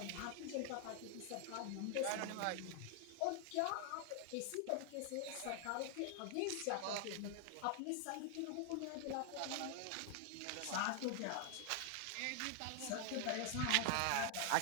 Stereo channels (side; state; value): both; different; correlation 0.00